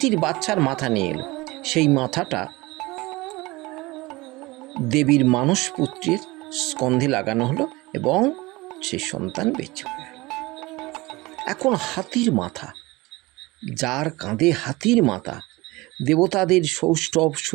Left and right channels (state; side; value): quieter; left; 21.7 dB